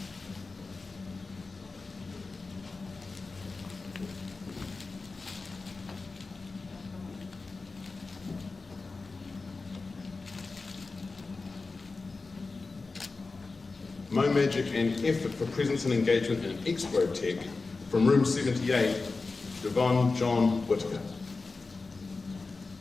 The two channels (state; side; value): quieter; right; 3.9 dB